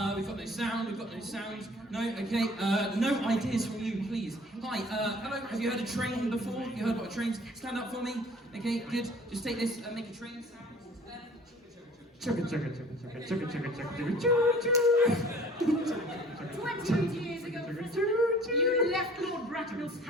We've got no sound. No, okay. No ideas from you, please. Hi, hello. Have you heard a train before? You heard what a train's? Stand up for me. Okay, good. Just take this and make a train sound. Chugga chugga chugga chugga chugga chugga chugga chugga chugga. 20 years ago, Prism, you left Lord Bracknell's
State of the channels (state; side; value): normal; both; correlation 0.50